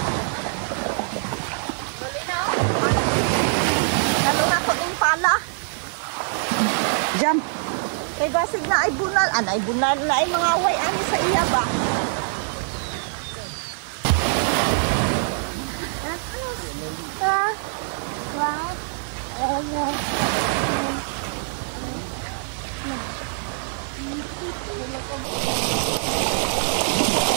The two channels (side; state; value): left; silent; 57 dB below the other